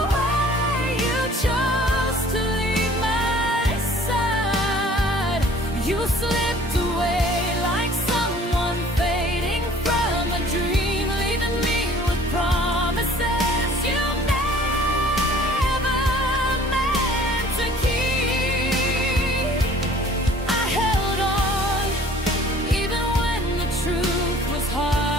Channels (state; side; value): normal; both; correlation 0.52